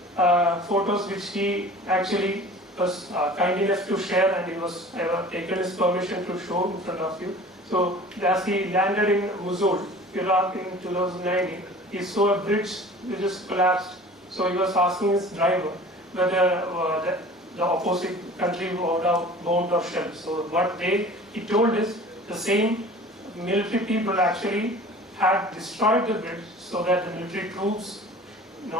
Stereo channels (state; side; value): normal; both; correlation 0.43